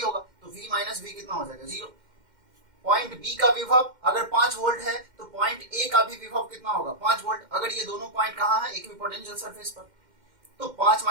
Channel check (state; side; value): late; left; 2.1 ms